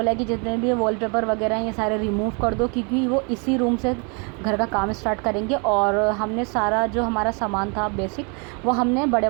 कि जितने भी वॉलपेपर वगैरह हैं ये सारे रिमूव कर दो, क्योंकि वो इसी रूम से घर का काम स्टार्ट करेंगे। और हमने सारा जो हमारा सामान था बेसिक, वो हमने बड़े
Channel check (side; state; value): left; quieter; 34.4 dB